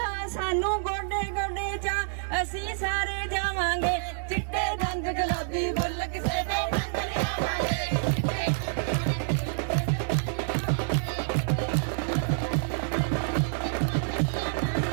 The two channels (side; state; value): left; silent; digital silence